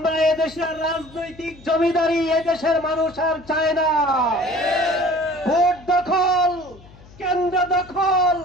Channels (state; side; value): noise; left; hum, 23 dB below the sound